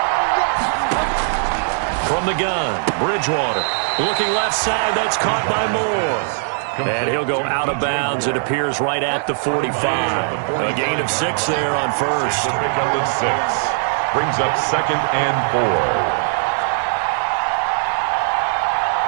From the gun, Bridgewater looking left side. That's caught by Moore. And he'll go out of bounds. It appears right at the 45. A gain of 6 there on first. Pick up at 6. Brings up 2nd and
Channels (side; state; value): left; silent; 66 dB below the other